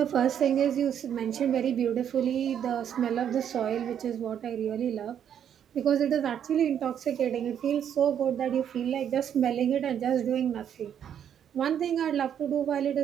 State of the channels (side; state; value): left; quieter; 9.1 dB